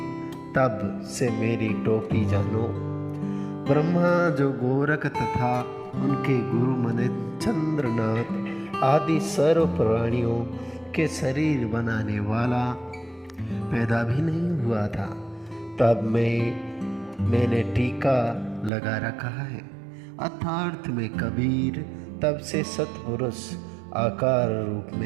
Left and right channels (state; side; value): drops out; left; at 18.7 s